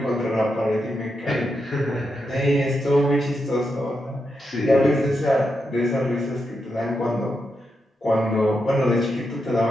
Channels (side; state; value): both; normal; correlation 0.85